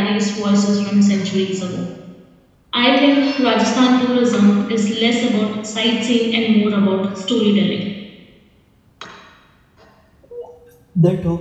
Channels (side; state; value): both; identical; correlation 1.00